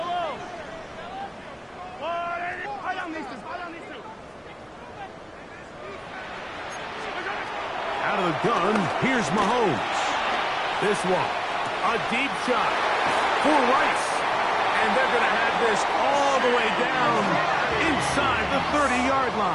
Out of the gun, here's Mahomes. This one, a deep shot for Rice. And they're going to have this all the way down inside the 30-yard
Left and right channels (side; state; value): both; identical; correlation 1.00